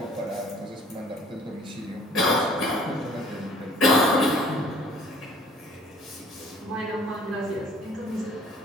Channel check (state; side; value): normal; both; correlation 0.54